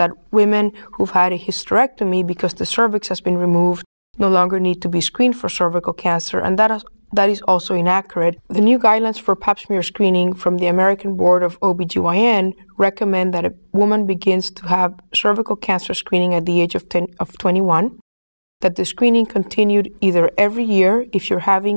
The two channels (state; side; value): inverted; both; correlation -1.00